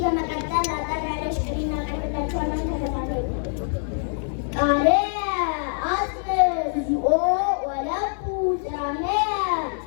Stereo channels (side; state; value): right; silent; 62 dB below the other